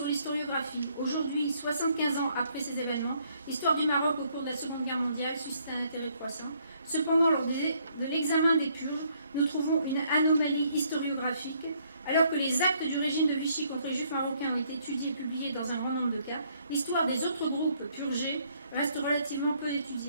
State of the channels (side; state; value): both; inverted; correlation -0.68